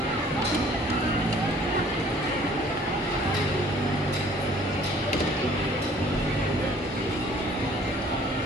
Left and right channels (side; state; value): both; normal; correlation 0.55